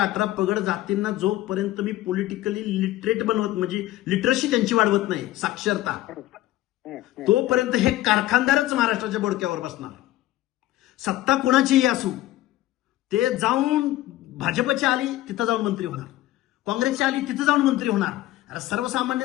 पगड जातींना जोपर्यंत मी पॉलिटिकली लिटरेट बनवत, म्हणजे लिटरसी त्यांची वाढवत नाही, साक्षरता, तोपर्यंत हे कारखानदारच महाराष्ट्राच्या बोडक्यावर बसणार. सत्ता कोणाचीही असू, ते जाऊन भाजपची आली तिथं जाऊन मंत्री होणार, काँग्रेसची आली तिथं जाऊन मंत्री होणार. अरे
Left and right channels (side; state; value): right; quieter; 15.7 dB